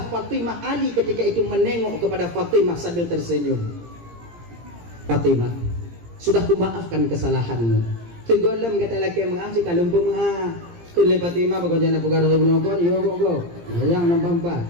Fatimah Ali ketika itu menengok kepada Fatimah sambil tersenyum. Fatimah sudah kumaafkan kesalahanmu segolem kata laki mengasih kalau pemuah kun le Fatimah bago jana pugar do bunokon yo go yang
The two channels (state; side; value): late; left; 17 ms